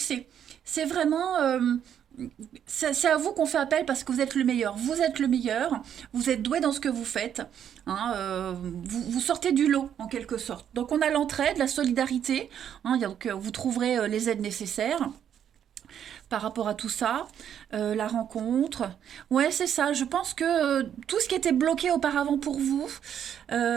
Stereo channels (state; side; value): quieter; left; 9.2 dB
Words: C'est vraiment... c'est à vous qu'on fait appel parce que vous êtes le meilleur. Vous êtes le meilleur, vous êtes doué dans ce que vous faites. Hein, vous sortez du lot en quelque sorte. Donc on a l'entraide, la solidarité. Hein, donc vous trouverez les aides nécessaires par rapport à tout ça. La rencontre. Ouais, c'est ça. Je pense que tout ce qui était bloqué auparavant pour vous